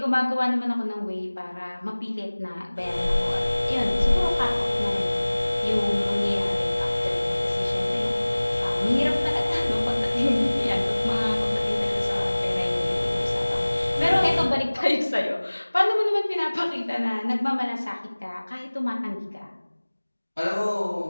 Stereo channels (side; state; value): both; inverted; correlation -1.00